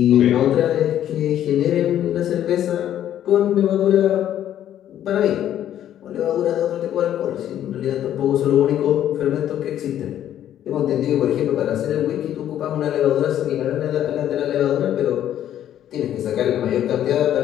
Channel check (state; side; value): quieter; right; 11.1 dB